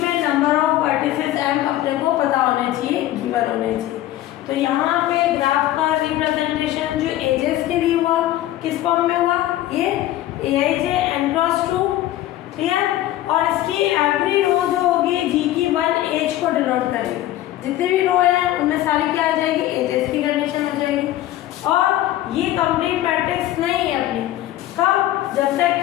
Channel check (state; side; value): quieter; right; 14.3 dB